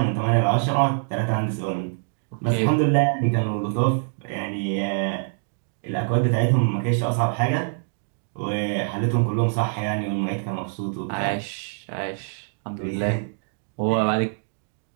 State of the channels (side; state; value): left; silent; digital silence